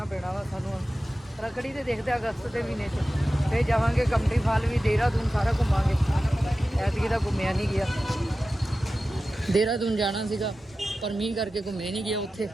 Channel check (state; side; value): normal; both; correlation 0.94